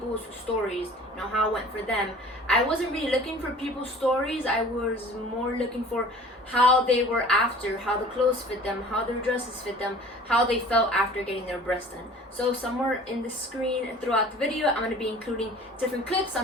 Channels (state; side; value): normal; both; correlation 0.46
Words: stories, you know, how it went for them. I wasn't really looking for people's stories. I was more looking for how they were after, how the clothes fit them, how their dresses fit them, how they felt after getting their breast done. So somewhere in the screen throughout the video, I'm going to be including different clips